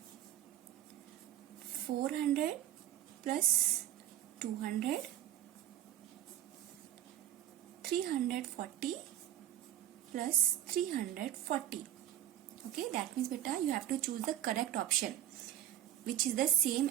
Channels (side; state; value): left; quieter; 11.9 dB